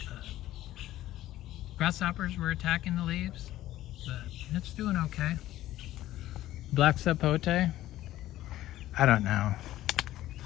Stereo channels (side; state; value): right; quieter; 14.6 dB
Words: grasshoppers were attacking the leaves, but it's doing okay. Black sapote, I don't know.